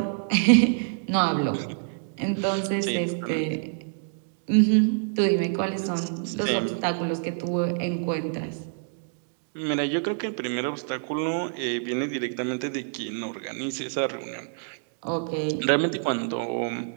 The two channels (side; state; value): left; silent; digital silence